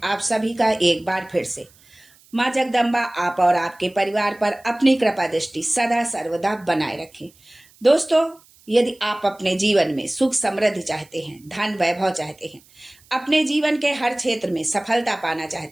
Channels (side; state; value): right; noise; hiss, 29 dB below the sound